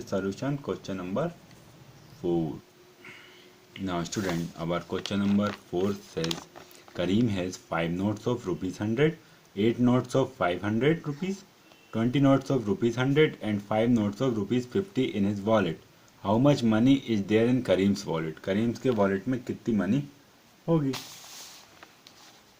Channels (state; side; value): identical; both; correlation 1.00